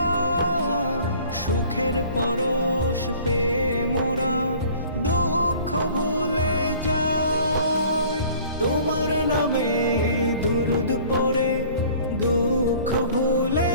সুখের পরশ পেয়ে মোরা দুঃখ ভুলে যাই। তোমার নামে দুরুদ পড়ে দুঃখ ভুলে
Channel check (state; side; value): inverted; both; correlation -0.50